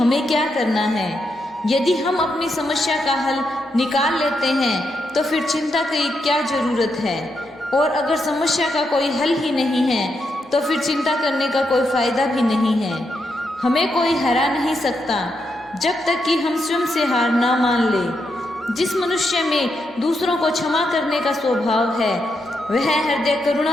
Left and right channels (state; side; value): normal; both; correlation 0.82